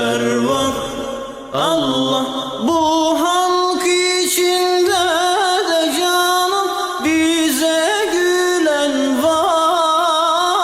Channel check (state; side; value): identical; both; correlation 1.00